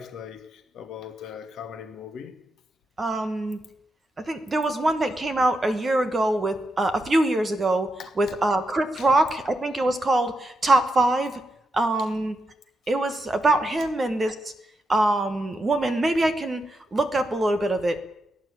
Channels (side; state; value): both; normal; correlation 0.85